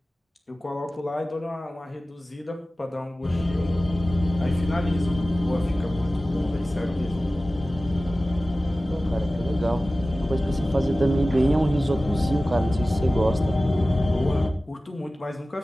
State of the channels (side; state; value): both; normal; correlation 0.96